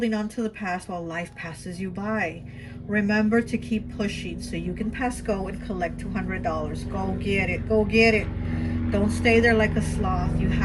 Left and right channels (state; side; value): identical; both; correlation 1.00